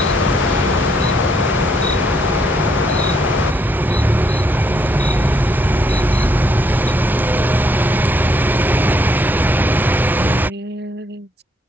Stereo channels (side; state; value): both; normal; correlation 0.72